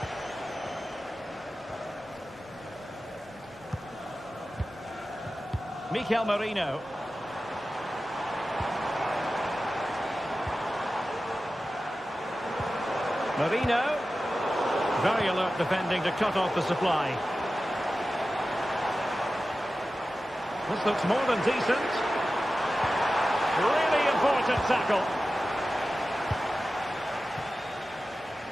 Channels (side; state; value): both; normal; correlation 0.94